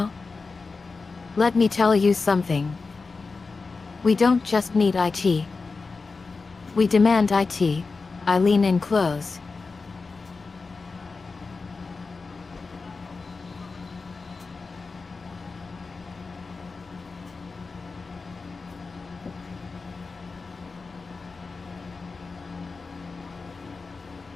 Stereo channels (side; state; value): right; quieter; 4.2 dB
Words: Let me tell you something. We don't just need IT. We demand IT. I lean in close.